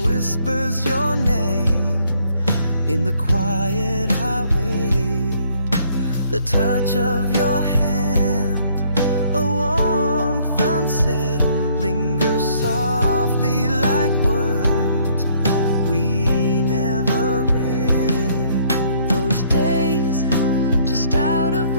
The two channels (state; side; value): inverted; both; correlation -0.64